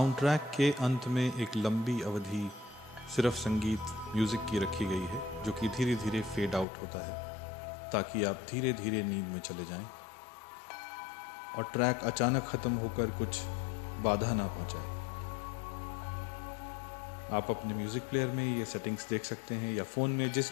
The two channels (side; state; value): right; drops out; at 6.7 s